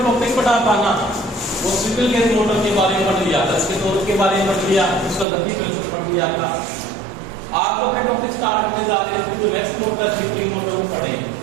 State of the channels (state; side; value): drops out; left; at 5.2 s